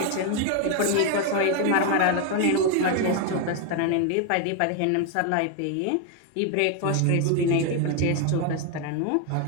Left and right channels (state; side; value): different; both; correlation 0.01